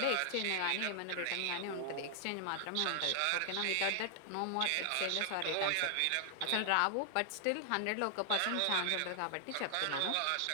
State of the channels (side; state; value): both; different; correlation 0.00